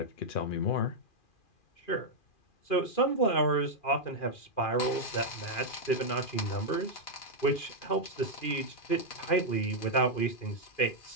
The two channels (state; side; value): late; right; 2.4 ms